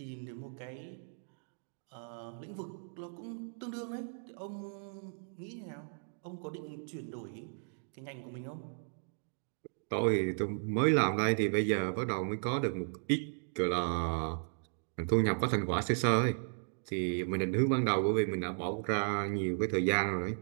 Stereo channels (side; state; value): left; silent; digital silence